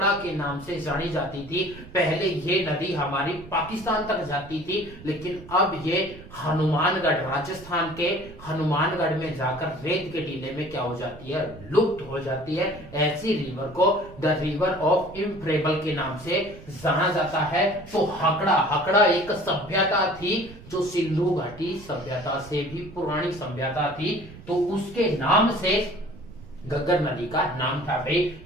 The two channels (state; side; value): noise; right; rumble, 18 dB below the sound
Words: के नाम से जानी जाती थी। पहले ये नदी हमारी पाकिस्तान तक जाती थी, लेकिन अब ये हनुमानगढ़, राजस्थान के हनुमानगढ़ में जाकर रेत के टीले में क्या हो जाती है, लुप्त हो जाती है। ऐसी रिवर को द रिवर ऑफ इम्प्रेबल के नाम से जाना जाता है। तो हकड़ा एक सभ्यता थी जो सिंधु घाटी सभ्यता से भी पुरानी सभ्यता थी, तो उसके नाम से गग्गर नदी का नाम था भाई।